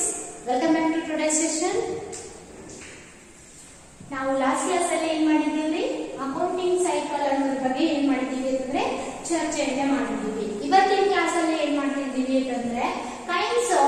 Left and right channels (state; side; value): identical; both; correlation 1.00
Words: Welcome back to today's session. ನಾವು last class ಅಲ್ಲಿ ಏನು ಮಾಡಿದ್ದೀವಿ ಅಕೌಂಟಿಂಗ್ ಸೈಕಲ್ ಅನ್ನೋದ್ರ ಬಗ್ಗೆ ಏನು ಮಾಡಿದ್ದೀವಿ ಅಂತಂದ್ರೆ ಚರ್ಚೆಯನ್ನ ಮಾಡಿದ್ದೀವಿ. ಇವತ್ತಿನ ಕ್ಲಾಸ್ ಅಲ್ಲಿ ಏನು ಮಾಡ್ತಿದ್ದೀವಿ ಅಂತಂದ್ರೆ ಕೈಂಡ್ಸ್